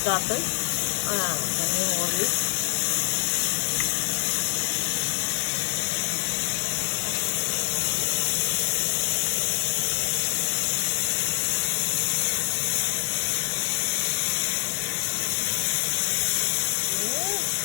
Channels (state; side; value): silent; right; 61 dB below the other